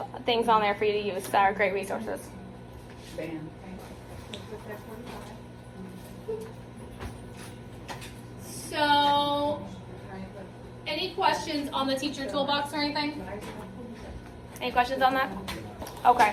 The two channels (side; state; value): both; identical; correlation 1.00